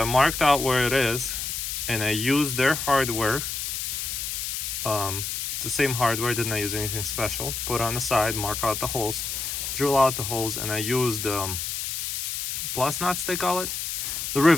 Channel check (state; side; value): noise; left; hiss, 3 dB below the sound